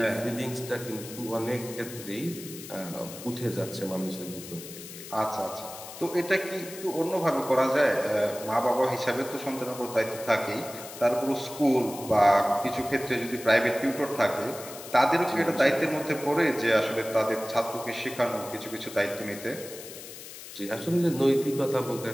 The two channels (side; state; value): left; noise; hiss, 13 dB below the sound